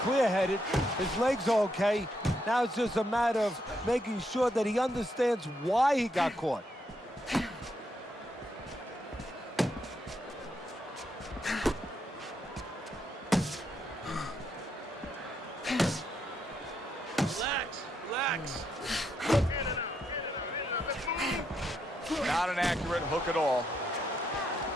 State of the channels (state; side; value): normal; both; correlation 0.78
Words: His legs are okay. Now it's just a matter of making sure that he understands why he got caught. Relax. Not an accurate hook at all.